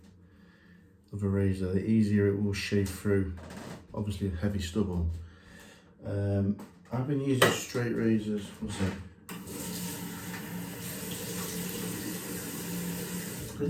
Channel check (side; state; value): both; identical; correlation 1.00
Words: of a razor, the easier it will shave through, obviously heavy stubble. I've been using straight razors, what's that? I've